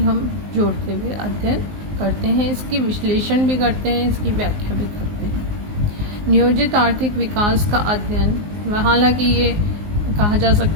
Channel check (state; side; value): late; left; 19 ms